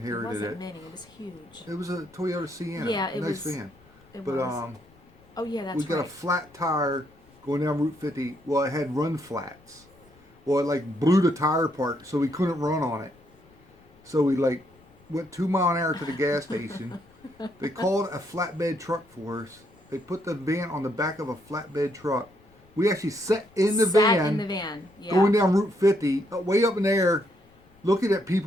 wasn't it. mini, it was huge. It was a Toyota Sienna. Yeah, it nice was- van. It But was. Oh yeah, that's we got right. a flat tire going down Route 50. Well, it had run flats. Well, it like blew the tire apart, so we couldn't run on it. So we like went 2 mile an hour to the gas station. They called a flatbed truck for us. They put the van on the back of a flatbed truck. We actually sat in the van, in the van. Yeah. going down Route 50, way up in the air, looking at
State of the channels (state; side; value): noise; left; rumble, 29 dB below the sound